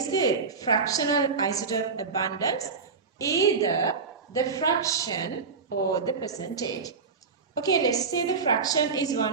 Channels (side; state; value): left; quieter; 5.0 dB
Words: the fractional isotope abundance, either the fraction or the percentage. Okay, let's say the fraction is